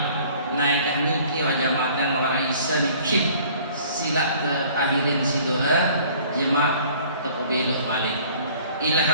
Naik niki wa jamaatan wa raisa niki sila ke akhirin si doa jemaah takbir balik ila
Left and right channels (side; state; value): both; inverted; correlation -0.53